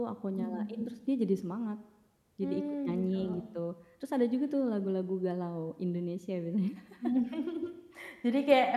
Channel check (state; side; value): identical; both; correlation 1.00